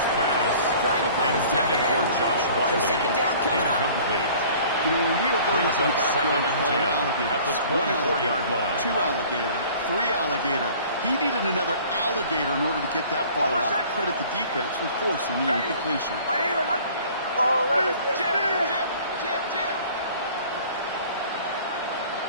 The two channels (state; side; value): inverted; both; correlation -0.49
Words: pass Trying to find his tight intended for end. Josh So Wiley. 2nd down coming up. Incomplete. You know, when we were going Brings up in up the backyard 2nd and calling 10 alligators, at the 1 24-yard line. 2 alligator, 3 alligator. He needed another alligator in order to get that ball out. Credit the defense for forcing the incompletion. My name is Hunt. Ball 11. Jim.